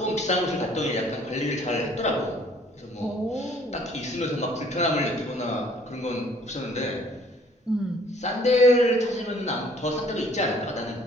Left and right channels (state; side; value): normal; both; correlation 0.58